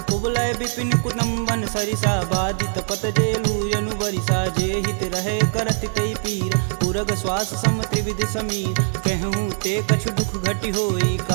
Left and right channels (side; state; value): left; silent; 62 dB below the other